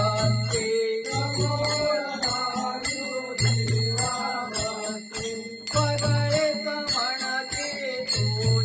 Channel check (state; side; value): identical; both; correlation 1.00